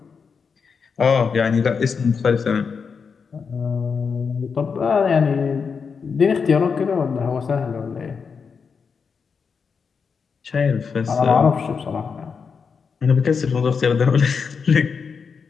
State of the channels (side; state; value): right; quieter; 5.8 dB